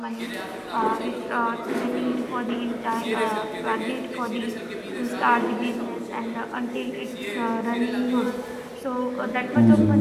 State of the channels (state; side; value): identical; both; correlation 1.00